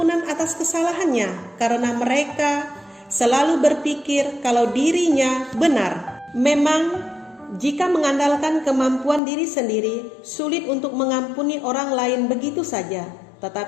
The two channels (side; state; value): right; drops out; at 9.2 s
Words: atas kesalahannya karena mereka selalu berpikir kalau dirinya benar. Memang jika mengandalkan kemampuan diri sendiri, sulit untuk mengampuni orang lain begitu saja.